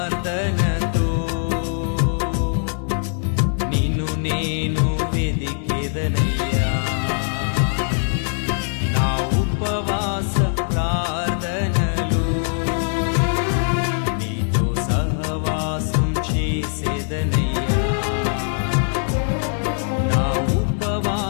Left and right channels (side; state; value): right; silent; 65 dB below the other